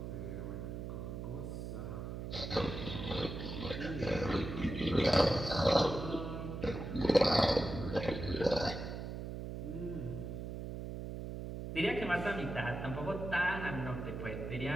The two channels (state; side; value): noise; right; hum, 6 dB below the sound